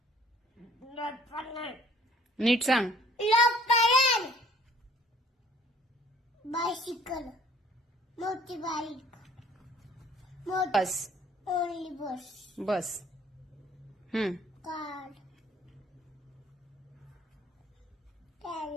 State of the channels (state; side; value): normal; both; correlation 0.56